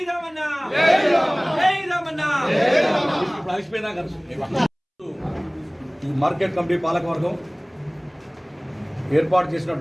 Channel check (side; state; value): both; identical; correlation 1.00